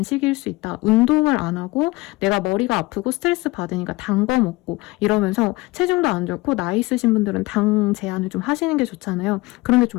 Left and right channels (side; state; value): right; quieter; 21.7 dB